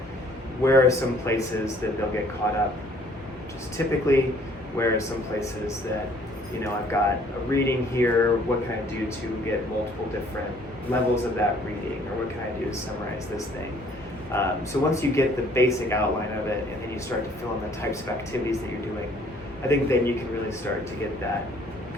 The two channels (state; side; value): normal; both; correlation 0.59